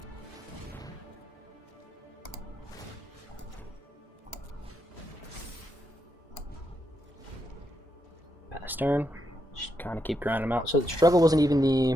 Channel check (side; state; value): both; normal; correlation 0.82